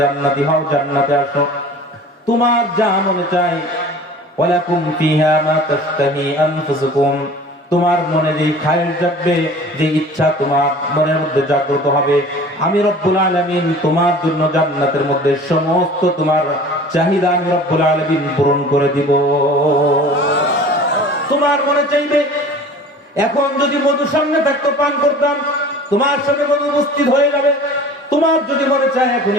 জান্নাতি হও, জান্নাতে আসো, তোমার যা মনে চায় ওয়ালাকুম ফিহা মা তাশতাহি আনফুসুকুম, তোমার মনে যেই খায়ের জাগবে, যে ইচ্ছা তোমার মনের মধ্যে জাগ্রত হবে, আমি রব্বুল আলামিন তোমার জন্য জান্নাতের মধ্যে সমস্ত তোমার চাহিদা আমি রব্বুল আলামিন পূরণ করে দিব। তোমার মনে চাইবে এখন যদি মধু সামনে থাকতো পান করতাম, তোমার সামনে মধু উপস্থিত হয়ে যাবে। তোমার যদি মনে চায় এখন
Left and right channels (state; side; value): normal; both; correlation 0.43